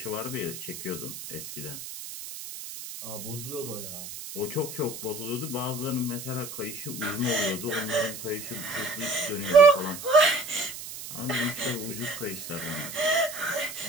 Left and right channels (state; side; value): noise; right; hiss, 10 dB below the sound